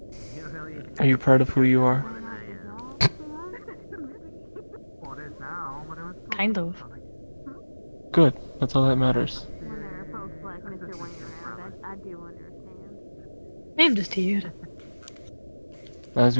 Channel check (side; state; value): both; inverted; correlation -1.00